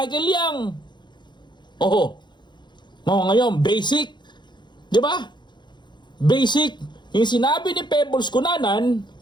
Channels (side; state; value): right; late; 0.22 ms